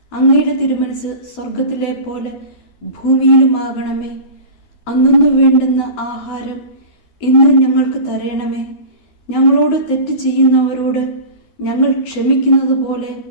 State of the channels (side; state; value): right; late; 12 ms